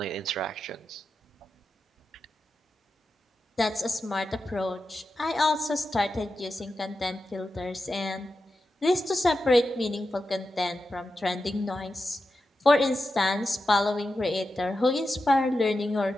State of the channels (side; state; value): both; normal; correlation 0.90